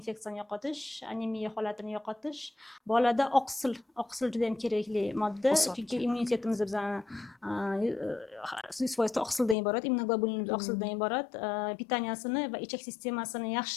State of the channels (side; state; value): right; drops out; at 9.6 s